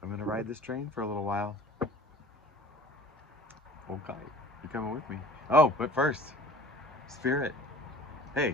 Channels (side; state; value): both; normal; correlation 0.45